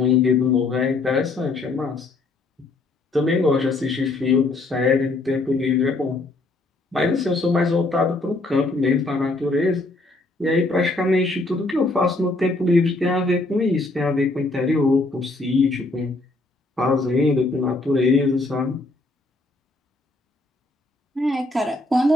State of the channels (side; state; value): right; quieter; 3.1 dB